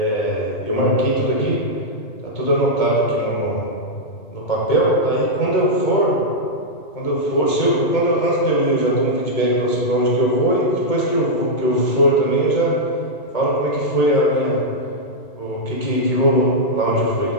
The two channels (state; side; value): late; right; 2.2 ms